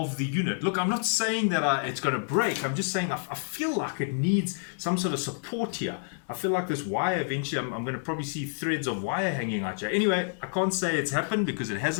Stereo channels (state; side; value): silent; right; digital silence